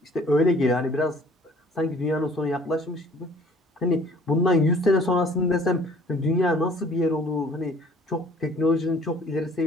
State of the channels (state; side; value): normal; both; correlation 0.54